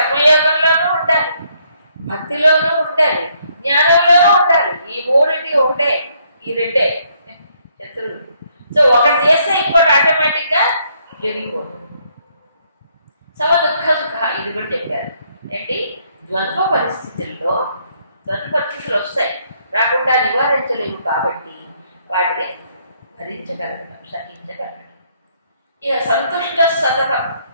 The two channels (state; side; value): inverted; both; correlation -0.70